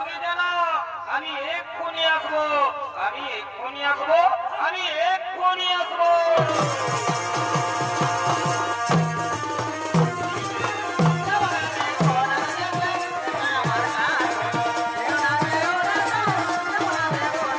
নি যেন। আমি এক্ষুনি আসবো, আমি এক্ষুনি আসবো, আমি এক্ষুনি আসবো।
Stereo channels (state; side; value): identical; both; correlation 1.00